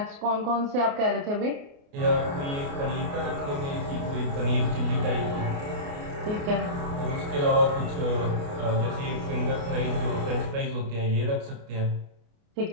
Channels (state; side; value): late; left; 29 ms